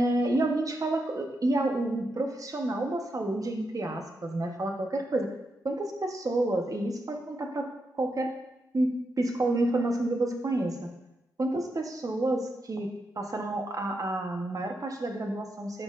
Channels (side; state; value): both; normal; correlation 0.84